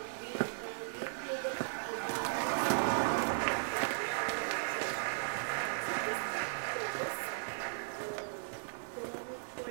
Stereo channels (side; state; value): left; silent; digital silence